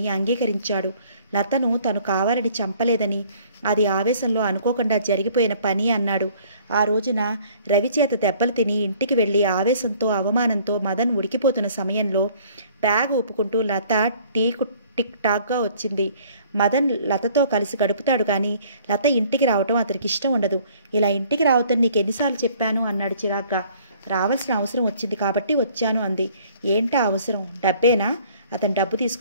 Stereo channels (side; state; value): both; inverted; correlation -0.56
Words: అంగీకరించాడు. లతను తను కావాలని చంపలేదని, అది ఆవేశంలో అనుకోకుండా జరిగిపోయిన పని అన్నాడు. ఆ రోజున రవి చేత దెబ్బలు తిని ఇంటికి వెళ్ళి ఆవేశంతో అవమానంతో మదన్ ఉడికిపోతున్న సమయంలో బ్యాగ్ ఊపుకుంటూ లత టిక్ టాక్గా వచ్చింది. మదన్ లతతో కలిసి గడుపుతాడు కానీ లత ఇంటికి రావటం అతనికి ఇష్టం ఉండదు. ఇలా ఇంటికి రావద్దని నీకు ఎన్నిసార్లు చెప్పాను అన్నాడు చిరాగ్గా. రావాల్సిన అవసరం వచ్చింది కాబట్టి వచ్చాను అంది. ఏంటా అవసరం? డబ్బేనా? అతను డబ్బు